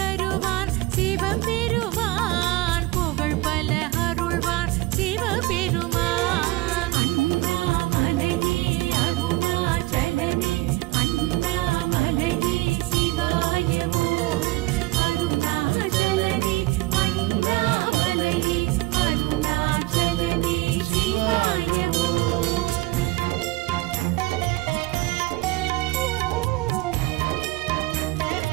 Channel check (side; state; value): left; quieter; 19.8 dB